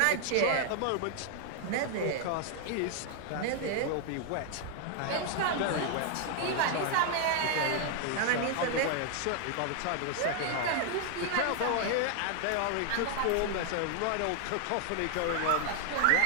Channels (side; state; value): both; different; correlation 0.00